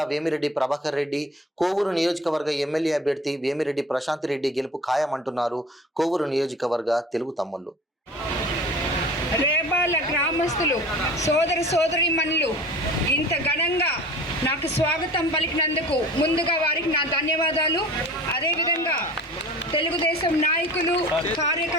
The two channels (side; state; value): both; normal; correlation 0.41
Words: వేమిరెడ్డి ప్రభాకర్ రెడ్డి, కోవూరు నియోజకవర్గ ఎమ్మెల్యే అభ్యర్థి వేమిరెడ్డి ప్రశాంత్ రెడ్డి గెలుపు ఖాయమంటున్నారు కోవూరు నియోజకవర్గ తెలుగు తమ్ముళ్లు. రేబాల గ్రామస్తులు సోదరీమణులు ఇంత ఘనంగా నాకు స్వాగతం పలికినందుకు ముందుగా వారికి నా ధన్యవాదాలు. అదేవిధంగా తెలుగుదేశం నాయకులు,